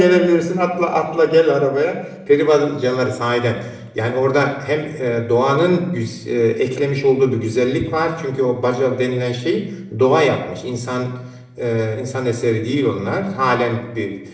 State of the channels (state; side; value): identical; both; correlation 1.00